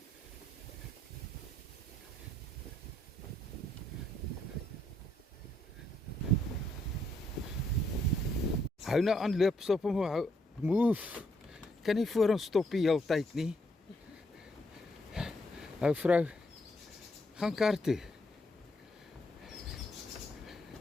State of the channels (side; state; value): both; normal; correlation 0.74